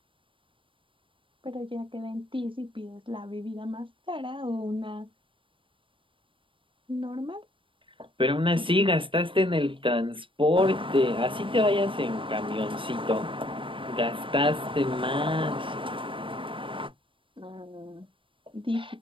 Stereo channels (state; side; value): late; left; 0.25 ms